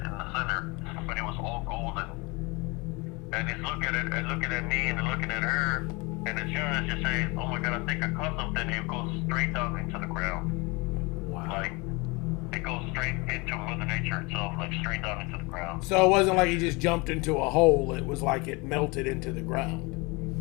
in the center, but it was all golden. And he's looking at me, and looking at her, and as soon as you say, "Oh my God, I think I caught something," it goes straight down into the ground. Wow. Like it goes straight into Mother Nature itself, like straight down into the ground. So it wasn't like he just jumped into a hole. It was like it melted into the ground.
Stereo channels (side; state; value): right; quieter; 26.7 dB